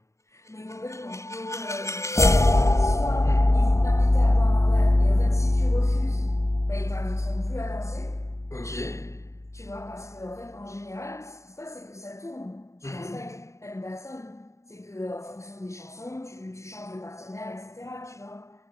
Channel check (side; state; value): right; late; 0.14 ms